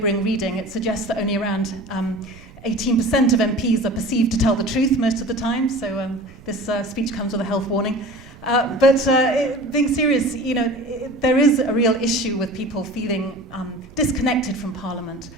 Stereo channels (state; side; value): noise; right; rumble, 22 dB below the sound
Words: reading. It suggests that only around 18% of MPs are perceived to tell the truth most of the time, so this speech comes with a health warning. But being serious, you know, there is a real issue with people feeling disconnected from Parliament